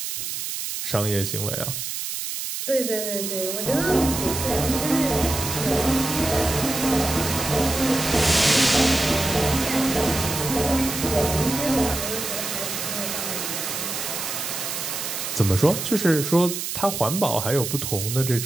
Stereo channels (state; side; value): noise; right; hiss, 4 dB below the sound